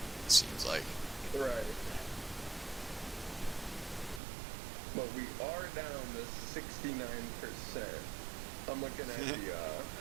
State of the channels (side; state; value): left; drops out; at 4.2 s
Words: It seems like. Right. But we are down to 69%. I'm looking at the